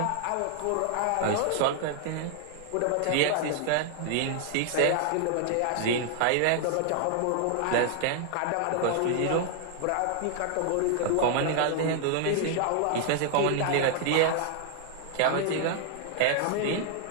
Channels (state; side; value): different; both; correlation 0.00